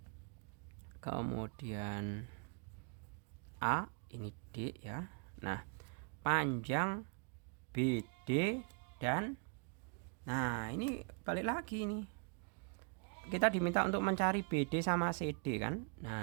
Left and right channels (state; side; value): quieter; left; 38.5 dB